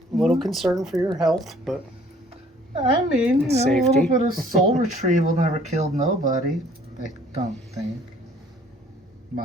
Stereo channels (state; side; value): normal; both; correlation 0.57